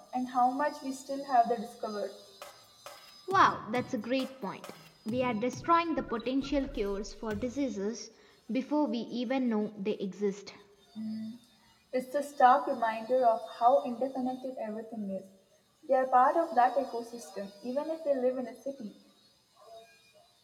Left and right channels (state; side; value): identical; both; correlation 1.00